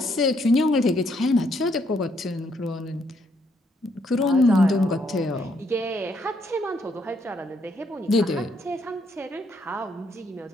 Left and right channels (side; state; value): both; normal; correlation 0.72